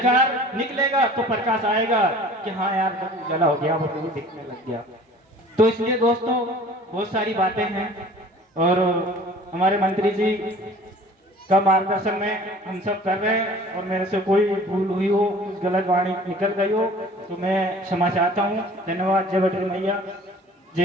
निकलेगा तो प्रकाश आएगा कि हाँ यार सब उजाला हो गया, वो भी दिखने लग गया। तो इसलिए दोस्तों बहुत सारी बातें हैं और हमारे मंत्री जी का मार्गदर्शन में हम सब कर रहे हैं, और मेरे से कोई भूल हुई हो, कुछ गलत वाणी निकल गई हो तो मैं क्षमा चाहता हूँ। धन्यवाद। जय बद्री मैया,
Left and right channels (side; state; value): both; normal; correlation 0.47